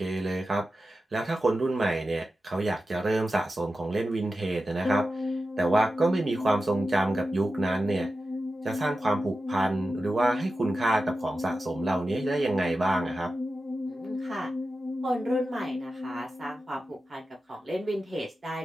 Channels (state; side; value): normal; both; correlation 0.92